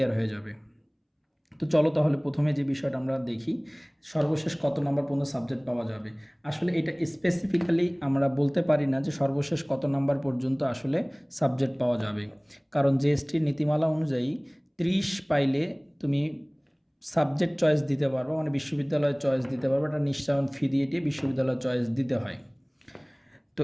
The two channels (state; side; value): identical; both; correlation 1.00